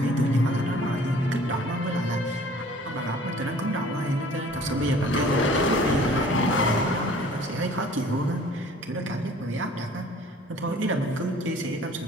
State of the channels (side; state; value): both; normal; correlation 0.51